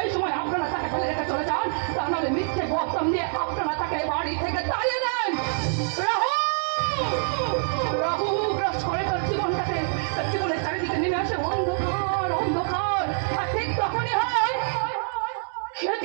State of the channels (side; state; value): left; silent; digital silence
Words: সময় আপনারা তাকে ফেলে রেখে চলে যান, তা নাহলে মিথ্যে বদনাম দিয়ে আপনারা তাকে বাড়ি থেকে তাড়িয়ে দেন। রাহু গ্রাস করে তার জীবনটাকে, তার জীবনের চারিদিকে নেমে আসে অন্ধকার। আর ঠিক তখনই হয়